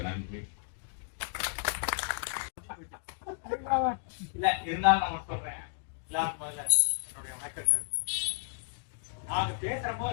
நன்றி. இல்ல இருந்தாலும் நான் சொல்றேன், எல்லாரும் முதல்ல என்னுடைய வணக்கங்கள். நாங்க பேசுறமோ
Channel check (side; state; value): right; silent; digital silence